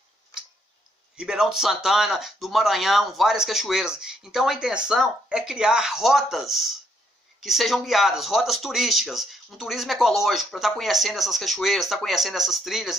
Ribeirão de Santana, do Maranhão, várias cachoeiras. Então a intenção é criar rotas que sejam guiadas, rotas turísticas, um turismo ecológico, para estar conhecendo essas cachoeiras, estar conhecendo essas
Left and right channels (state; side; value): normal; both; correlation 0.72